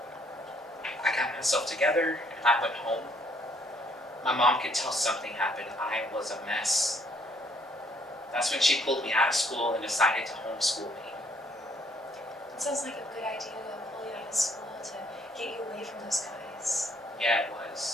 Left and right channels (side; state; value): both; normal; correlation 0.67